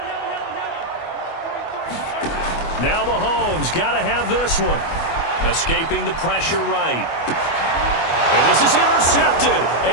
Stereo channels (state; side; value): late; right; 25 ms